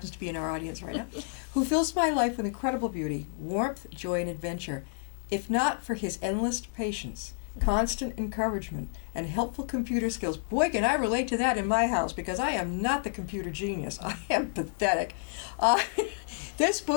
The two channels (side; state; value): right; silent; digital silence